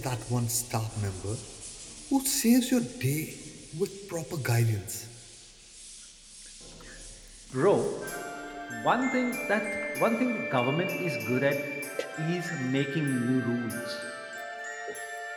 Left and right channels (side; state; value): both; identical; correlation 1.00